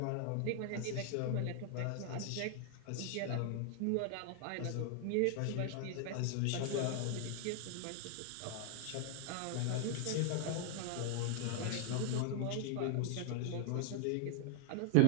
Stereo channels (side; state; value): both; different; correlation 0.00